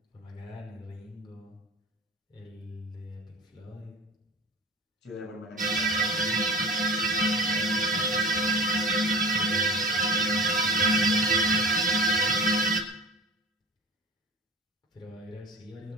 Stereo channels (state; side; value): normal; both; correlation 0.38